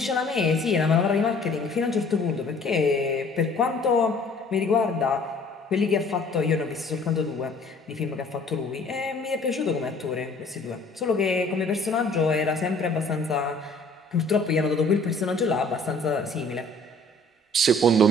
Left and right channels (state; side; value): normal; both; correlation 0.55